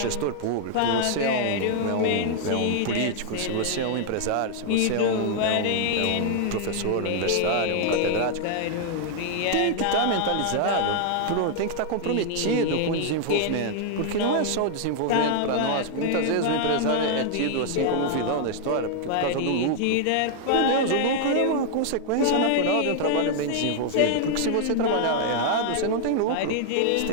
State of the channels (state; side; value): different; both; correlation 0.00